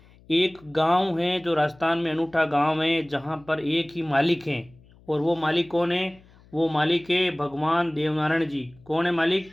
एक गांव है जो राजस्थान में अनूठा गांव है जहां पर एक ही मालिक है। और वो मालिक कौन है? वो मालिक है भगवान देवनारायण जी। कौन है मालिक?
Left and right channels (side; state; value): left; noise; hum, 27 dB below the sound